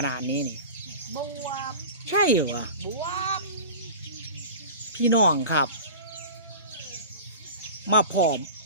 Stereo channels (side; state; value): both; inverted; correlation -0.35